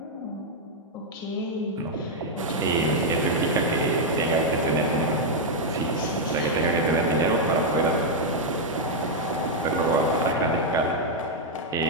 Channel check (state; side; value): normal; both; correlation -0.01